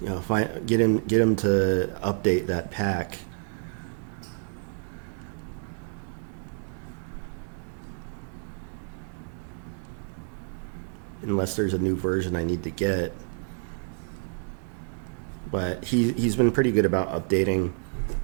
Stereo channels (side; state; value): left; silent; 59 dB below the other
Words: you know, get him to update that pack. Unless there's a new version I need to get. But he's been pretty good about updating